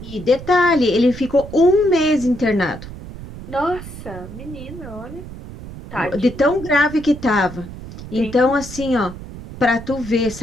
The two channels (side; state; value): right; noise; rumble, 13 dB below the sound